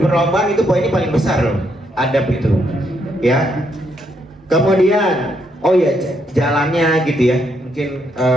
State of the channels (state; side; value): normal; both; correlation 0.76